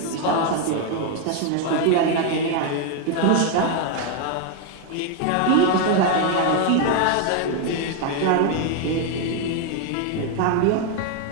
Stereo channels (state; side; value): different; both; correlation 0.01